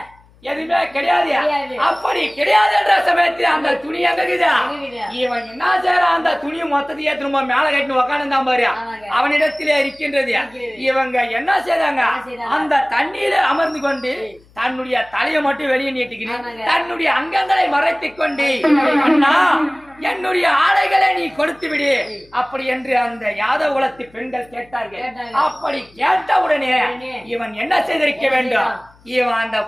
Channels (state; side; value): noise; left; hum, 29 dB below the sound